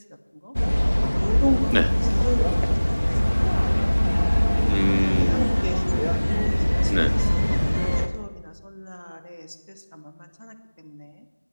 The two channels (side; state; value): both; inverted; correlation -1.00